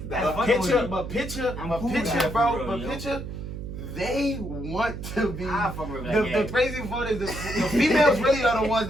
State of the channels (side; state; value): right; noise; hum, 8 dB below the sound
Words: That's But fucking with me. picture, I'm cool with that for real, yo. picture they want to be. I fuck with her, The crazy part is the females really are the ones